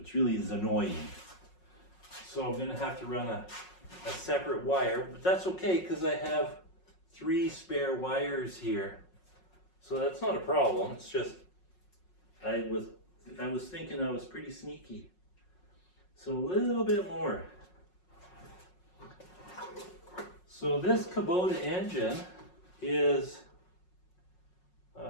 really is annoying. So I'm gonna have to run a separate wire, but that's okay because I have 3 spare wires here. So that's not a problem. It's just, I was thinking I was pretty sneaky. So a little bit more. So this Kubota engine is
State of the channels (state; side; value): late; right; 5.5 ms